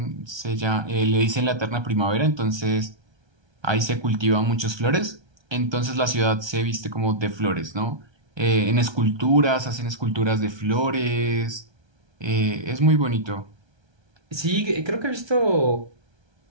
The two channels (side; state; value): left; late; 1.3 ms